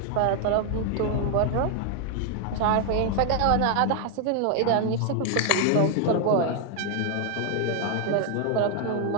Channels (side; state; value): both; different; correlation 0.01